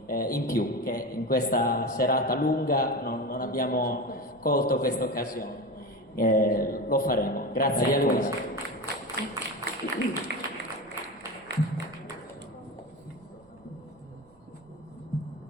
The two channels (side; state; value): right; noise; rumble, 29 dB below the sound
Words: in più, che in questa serata lunga non abbiamo colto questa occasione. Lo faremo. Grazie Maria Luisa.